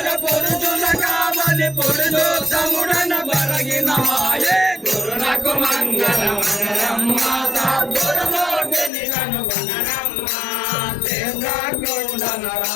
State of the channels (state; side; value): drops out; right; at 8.9 s